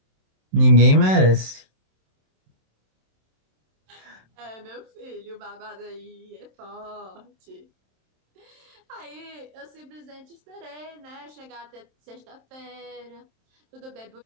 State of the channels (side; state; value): left; late; 27 ms